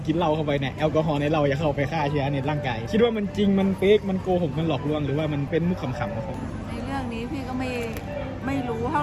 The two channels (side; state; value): both; identical; correlation 1.00